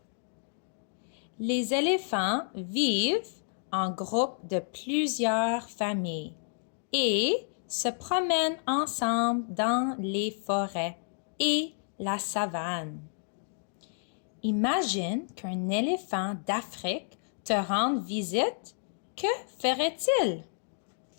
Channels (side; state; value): right; silent; digital silence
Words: Les éléphants vivent en groupe de plusieurs familles et se promènent ensemble dans les forêts et la savane. Imagine qu'un éléphant d'Afrique te rende visite. Que ferait-il?